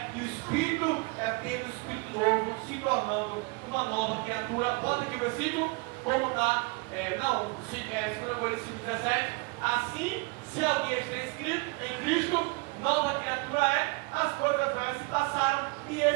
E o Espírito é ter o Espírito novo, se tornando uma nova criatura. Bota aqui o versículo, como está, 2 Coríntios 17. Assim, se alguém está inscrito em Cristo, nova criatura é, as coisas velhas se passaram, e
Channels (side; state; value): left; quieter; 28.1 dB